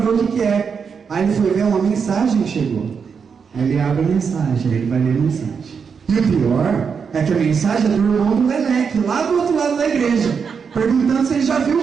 o que é. Aí ele foi ver uma mensagem que chegou. Aí ele abre a mensagem, aí ele vai ler a mensagem. E o pior é que a mensagem é do irmão do Leleque, lá do outro lado da igreja, perguntando se ele já viu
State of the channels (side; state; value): left; quieter; 6.1 dB